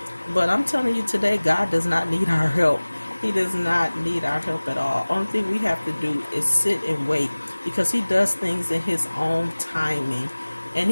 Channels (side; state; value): both; inverted; correlation -1.00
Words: But I'm telling you today, God does not need our help. He does not need our help at all. Only thing we have to do is sit and wait, because He does things in His own timing. And